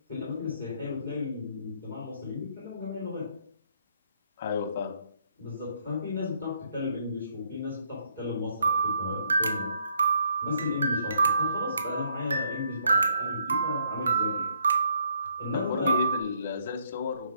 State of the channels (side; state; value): both; inverted; correlation -0.69